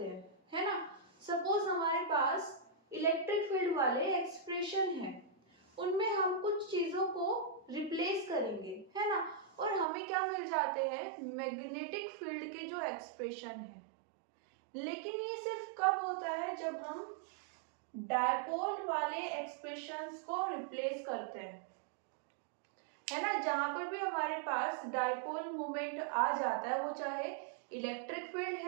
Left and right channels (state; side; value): drops out; left; at 9.9 s